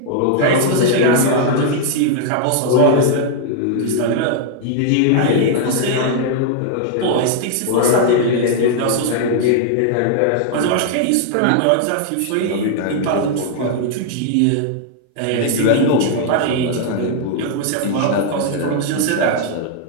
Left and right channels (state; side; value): different; both; correlation -0.01